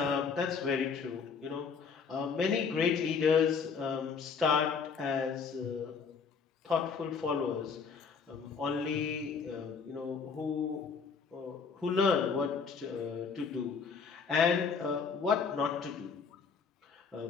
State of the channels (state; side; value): quieter; right; 5.7 dB